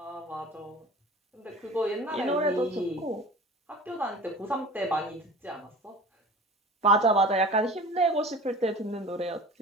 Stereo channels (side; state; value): both; normal; correlation 0.39